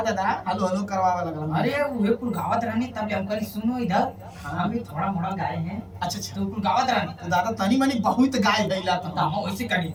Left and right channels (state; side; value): identical; both; correlation 1.00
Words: दादा, हेलो हेलो करवावा लगल। अरे वो कुल गावत रहनी तब हम करी सुनो इधर हाँ। हम भी थोड़ा मोड़ा गाए हैं। अच्छा अच्छा। तो कुल गावत रहनी तो दादा तनी मनी बहुत गाय भइला तो। तो हम वैसे करी